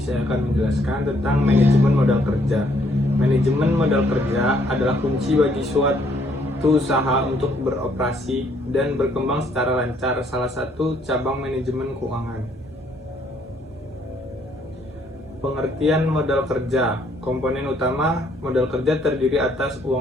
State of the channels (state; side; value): normal; both; correlation 0.67